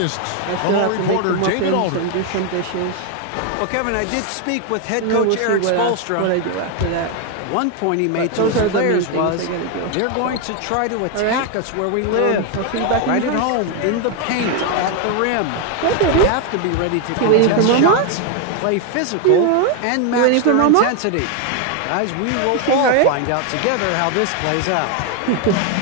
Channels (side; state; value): both; different; correlation 0.01